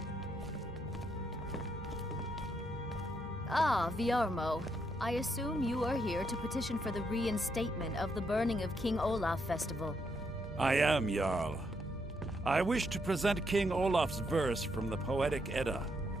Ah, Viarmo. I assume you are here to petition for the reinstatement of the burning of King Olaf Festival. I am, Jarl. I wish to present King Olaf's verse from the Poetic Edda,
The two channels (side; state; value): both; normal; correlation 0.77